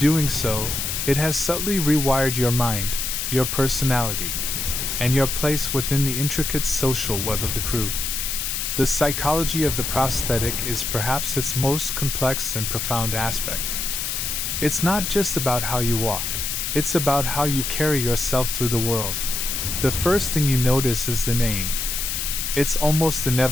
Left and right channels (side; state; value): left; noise; hiss, 2 dB below the sound